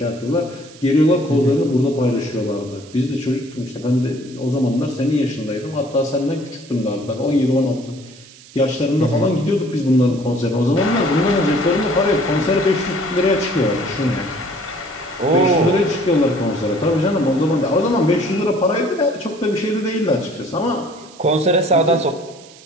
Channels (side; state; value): right; noise; hiss, 22 dB below the sound